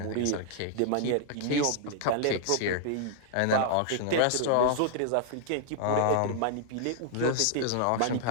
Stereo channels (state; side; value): different; both; correlation 0.00